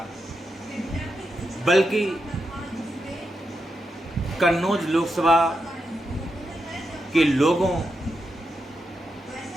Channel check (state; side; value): normal; both; correlation 0.86